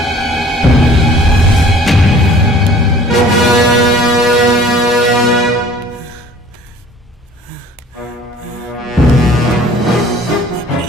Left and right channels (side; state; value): both; normal; correlation 0.50